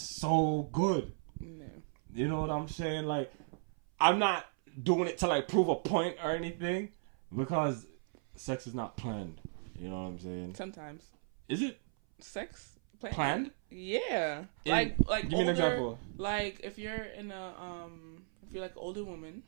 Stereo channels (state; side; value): silent; left; 54 dB below the other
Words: good? No. You know what I'm saying? Like, I'm not doing it to like prove a point or anything, because sex is not planned. You know what I'm saying? Sometimes. Is it sex planned? Yeah. Like give me an example. Like if you're in a if you're like an older woman,